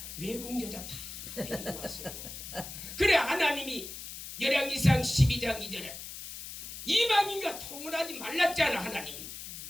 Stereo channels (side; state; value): left; noise; hiss, 10 dB below the sound